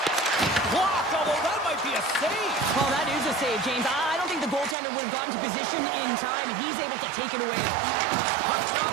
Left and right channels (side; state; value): left; drops out; at 4.8 s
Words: Blocked, although that might be a save. Well, that is a save, James. I don't think the goaltender would have gotten to position in time, and he's able to take it away. Puck